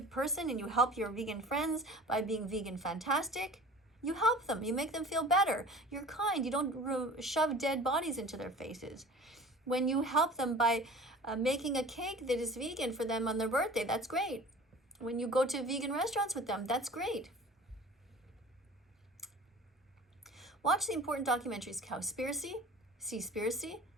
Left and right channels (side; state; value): both; normal; correlation 0.42